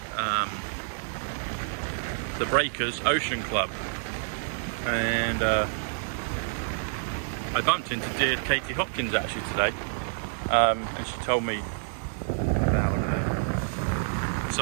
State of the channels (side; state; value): left; silent; digital silence